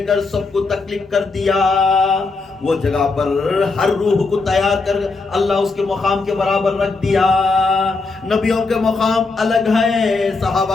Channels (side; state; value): right; quieter; 3.9 dB